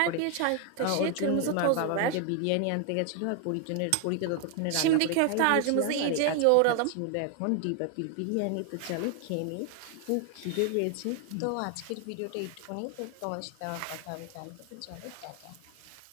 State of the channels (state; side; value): different; both; correlation 0.00